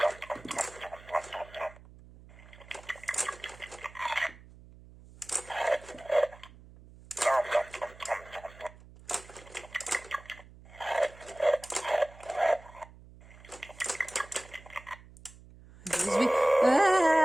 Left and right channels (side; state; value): right; noise; hum, 21 dB below the sound